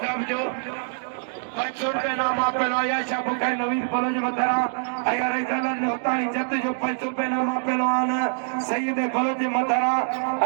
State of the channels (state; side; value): silent; left; digital silence